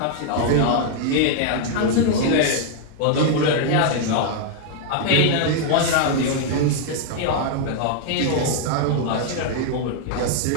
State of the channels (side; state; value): both; different; correlation 0.00